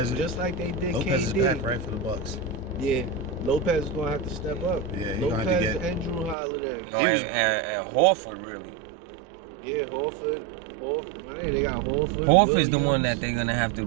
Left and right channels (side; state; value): left; drops out; at 6.4 s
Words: just like they did Lopez KD. is back, right, for the Bucks. Yeah, Lopez is gonna have to step up. Yeah, he's Lopez gonna have to get. and Drew Holiday. No, and Horford really. Yeah, Horford. Man, they got Horford. Horford's the one that they're gonna have to